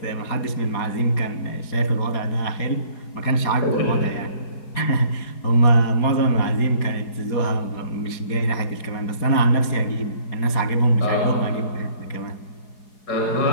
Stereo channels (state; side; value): late; right; 4.8 ms